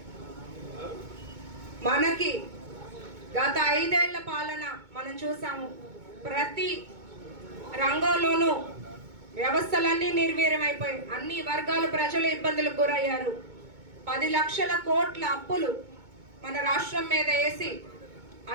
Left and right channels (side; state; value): left; late; 2.2 ms